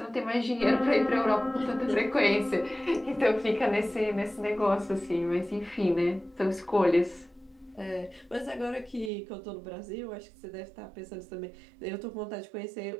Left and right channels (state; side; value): drops out; left; at 9.1 s